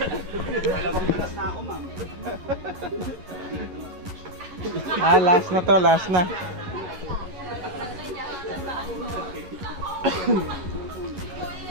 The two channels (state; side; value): late; left; 11 ms